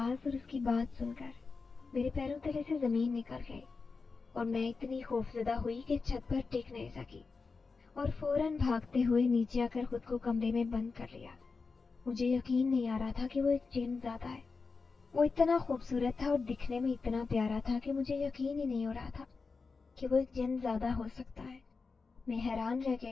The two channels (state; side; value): quieter; right; 4.5 dB